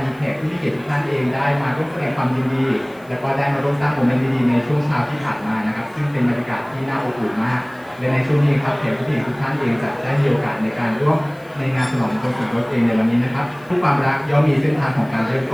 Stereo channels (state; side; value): noise; left; hiss, 29 dB below the sound